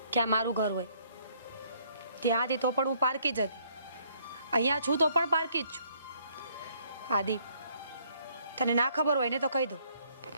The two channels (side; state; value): both; inverted; correlation -0.65